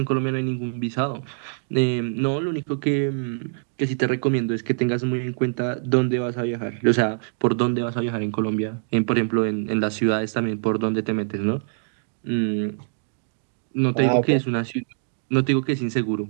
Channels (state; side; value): silent; left; digital silence